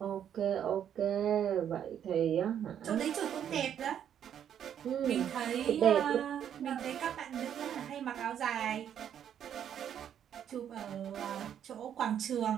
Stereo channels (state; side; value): quieter; left; 9.3 dB